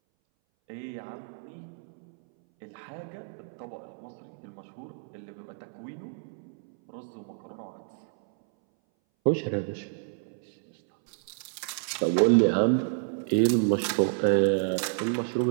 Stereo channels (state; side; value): silent; left; 58 dB below the other